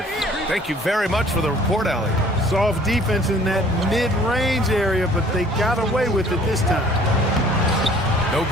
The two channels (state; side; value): normal; both; correlation 0.54